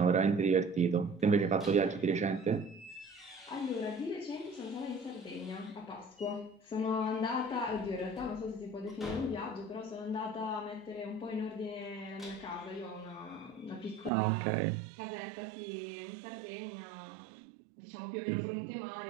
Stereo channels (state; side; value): drops out; left; at 14.1 s